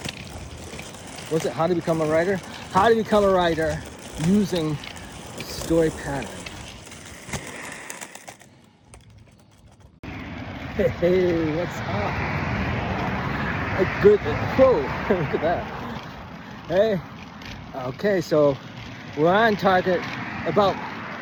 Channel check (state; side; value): identical; both; correlation 1.00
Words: what's it? How to become a writer? How to become a writer using a story pattern. Hey, what's up? A good, whoa, look at that. Hey, okay, so we're on target, about